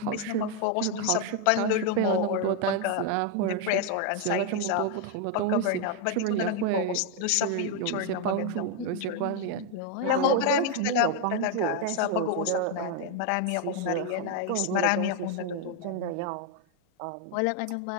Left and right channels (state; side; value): different; both; correlation 0.01